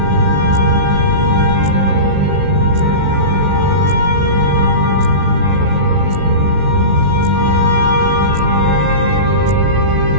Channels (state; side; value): late; left; 16 ms